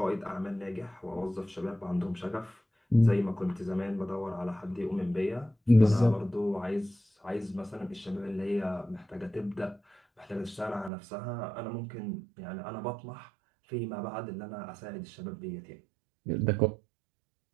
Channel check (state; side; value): drops out; left; at 10.9 s